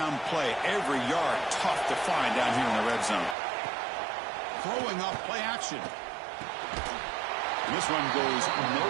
play. Every yard tough to find down here in the red zone. Throwing up play action. And this one goes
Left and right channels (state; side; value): drops out; left; at 3.4 s